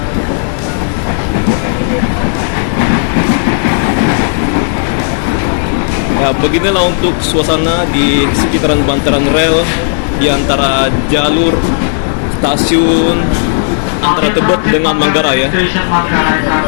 Ya, beginilah untuk suasana di sekitaran bantaran rel di antara jalur stasiun antara Tebet dengan Manggarai ya.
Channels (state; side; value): silent; right; digital silence